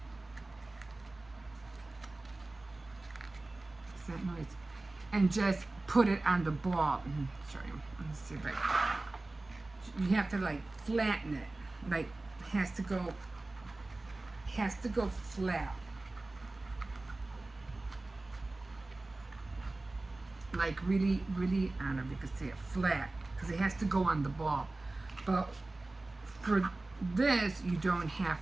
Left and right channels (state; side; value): quieter; left; 3.0 dB